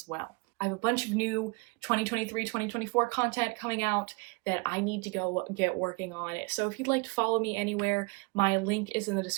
well? I have a bunch of new 2023-2024 content coming out that I need to go get working on. So if you'd like to follow me anywhere, my link is in the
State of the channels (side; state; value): left; quieter; 28.3 dB